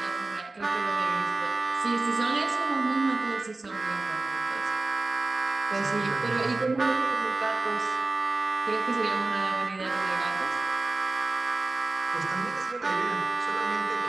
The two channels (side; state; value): left; quieter; 3.3 dB